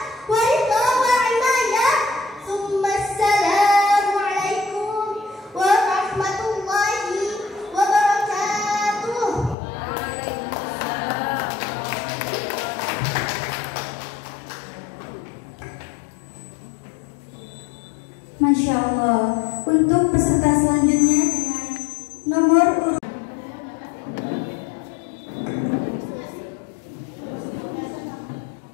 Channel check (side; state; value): right; drops out; at 9.6 s